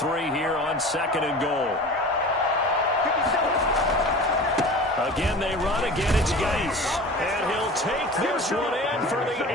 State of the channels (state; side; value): normal; both; correlation 0.37